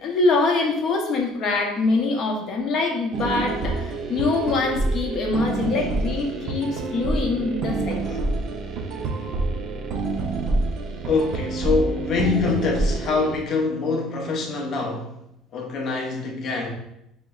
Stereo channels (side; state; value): both; normal; correlation 0.59